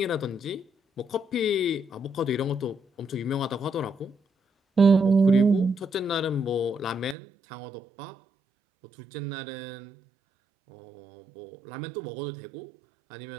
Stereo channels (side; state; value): left; drops out; at 7.2 s